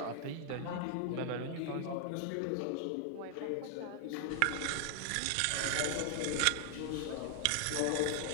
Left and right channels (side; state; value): both; different; correlation 0.00